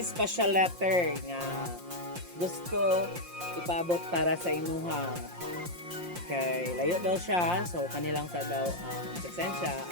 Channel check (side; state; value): left; late; 5.7 ms